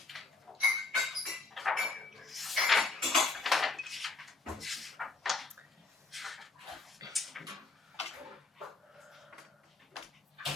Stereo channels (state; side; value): quieter; right; 3.7 dB